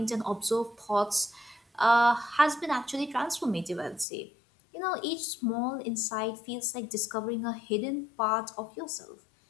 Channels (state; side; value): drops out; right; at 4.0 s